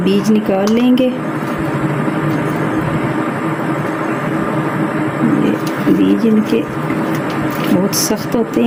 निकाल लेंगे। ये बीज इनके बहुत सख्त होते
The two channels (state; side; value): identical; both; correlation 1.00